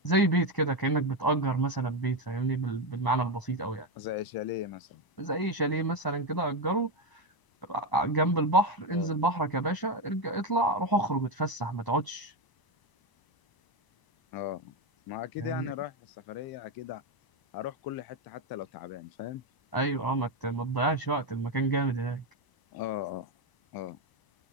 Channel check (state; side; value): late; right; 1.0 ms